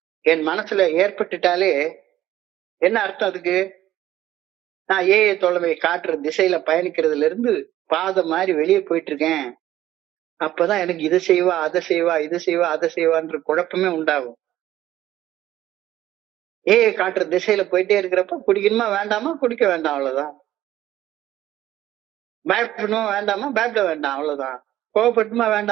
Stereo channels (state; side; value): quieter; left; 13.6 dB